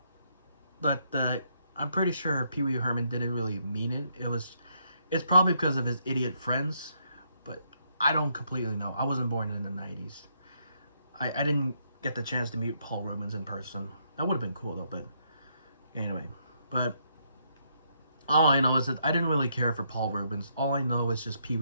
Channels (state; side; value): inverted; both; correlation -0.75